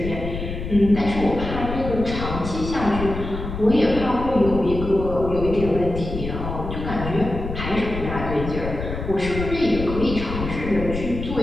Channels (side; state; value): left; noise; rumble, 6 dB below the sound